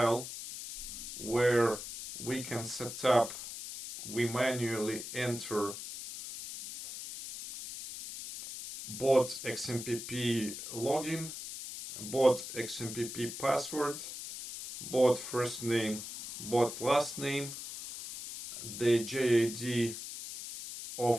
where we can set up, we manually enter bot XMPP login, bot XMPP password, bot first name, bot last name, the JID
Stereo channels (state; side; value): noise; left; hiss, 9 dB below the sound